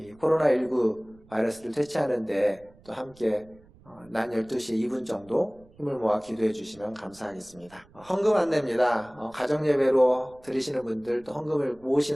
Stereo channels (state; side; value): noise; right; rumble, 27 dB below the sound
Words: 코로나19 바이러스를 퇴치하는데 또 함께 낮 12시 2분 정도 힘을 모아 기도해 주시면 감사하겠습니다. 헌금 안내입니다. 가정예배로 드리시는 분들, 또